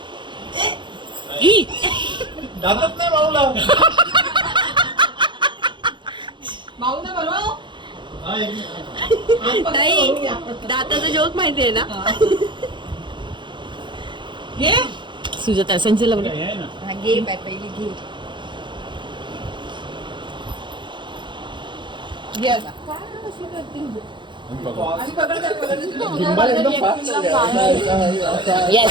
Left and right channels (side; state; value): left; late; 0.23 ms